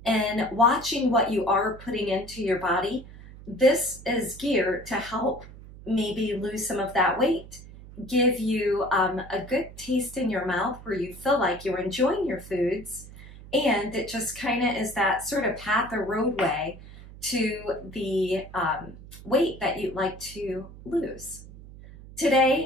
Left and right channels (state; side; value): noise; right; hum, 17 dB below the sound